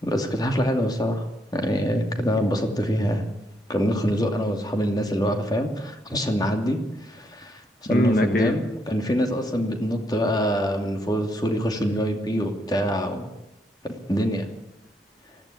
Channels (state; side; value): normal; both; correlation 0.76